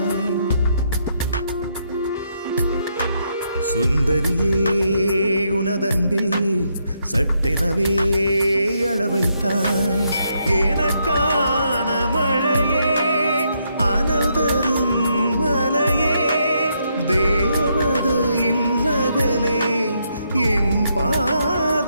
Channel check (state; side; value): inverted; both; correlation -0.77